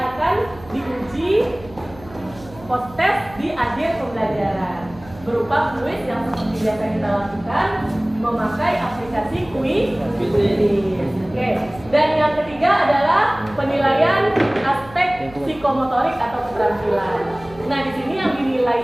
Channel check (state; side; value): noise; right; hum, 20 dB below the sound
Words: diuji post-test di akhir pembelajaran berupa kuis yang seperti biasa kita lakukan memakai aplikasi kuis. Oke. Dan yang ketiga adalah penilaian aspek psikomotorik atau keterampilan. Nah, di sini yang